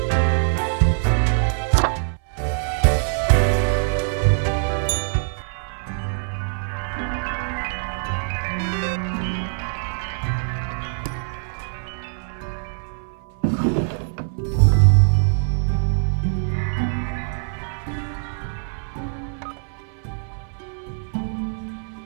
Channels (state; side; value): silent; left; 59 dB below the other